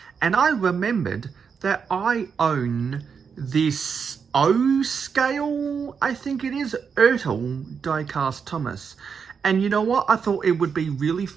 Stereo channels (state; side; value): quieter; left; 6.3 dB